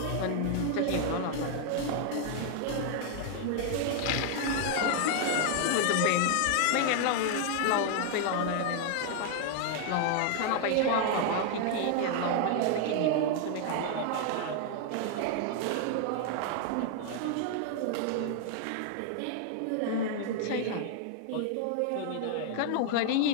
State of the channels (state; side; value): different; both; correlation 0.00